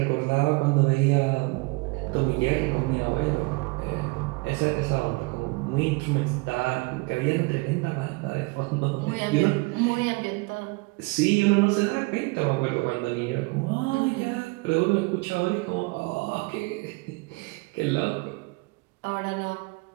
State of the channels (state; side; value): quieter; left; 26.5 dB